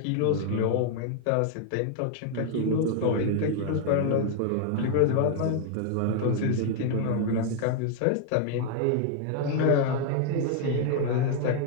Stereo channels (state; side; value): different; both; correlation 0.00